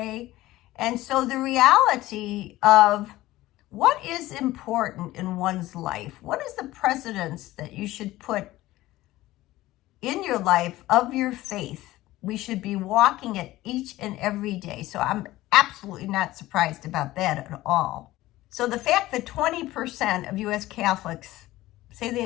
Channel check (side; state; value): right; quieter; 16.8 dB